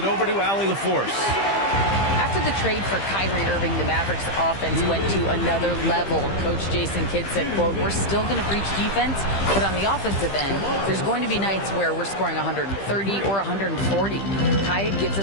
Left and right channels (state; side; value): late; right; 15 ms